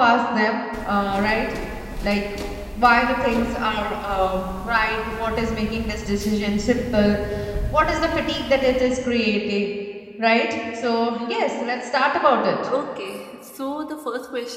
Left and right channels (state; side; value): identical; both; correlation 1.00